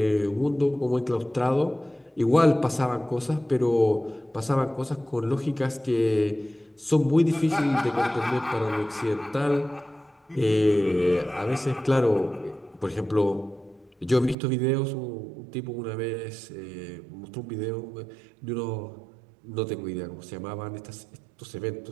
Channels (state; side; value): drops out; left; at 14.4 s